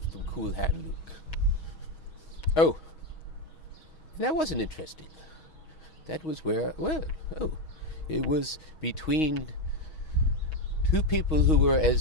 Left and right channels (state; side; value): late; right; 6.3 ms